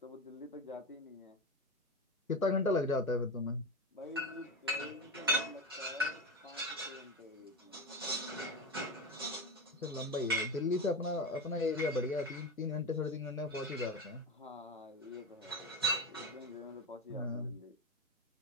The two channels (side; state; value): both; normal; correlation 0.20